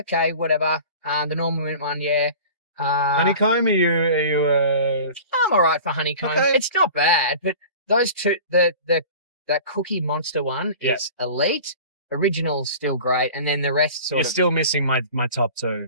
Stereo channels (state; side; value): inverted; both; correlation -0.40